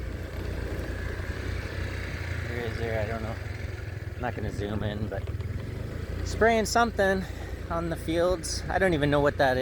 Where is there? I don't know. I'm not going to zoom in, but spraying something on the fields. I don't even know what that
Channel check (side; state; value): both; identical; correlation 1.00